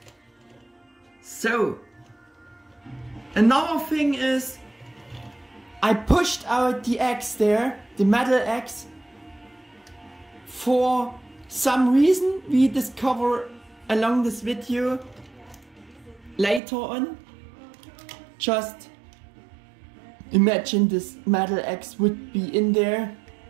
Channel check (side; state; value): left; drops out; at 16.6 s